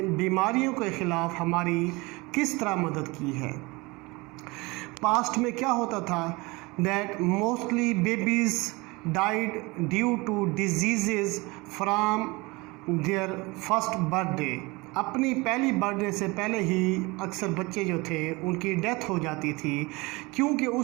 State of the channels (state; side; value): quieter; left; 24.3 dB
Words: बीमारियों के ख़िलाफ़ हमारी किस तरह मदद की है। पास्ट में क्या होता था, that mostly babies died due to diseases from their first birthday। अपनी पहली बर्थडे से पहले ही अक्सर बच्चे जो थे उनकी डेथ हो जाती थी, क्योंकि